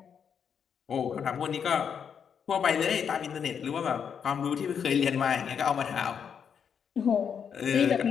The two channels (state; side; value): quieter; right; 7.4 dB